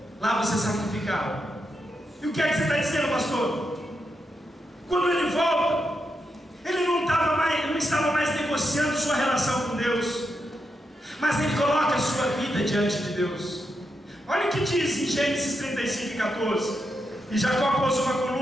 Lá você sacrificava. E o que é que você está dizendo, pastor? Quando ele volta, ele não estava mais negociando sua relação com Deus, mas ele coloca a sua vida diante de Deus. Olha o que diz em Gênesis 35 e 14: e Jacó pôs uma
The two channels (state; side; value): normal; both; correlation 0.84